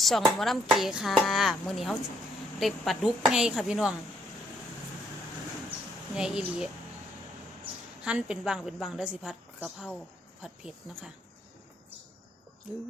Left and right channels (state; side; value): normal; both; correlation 0.70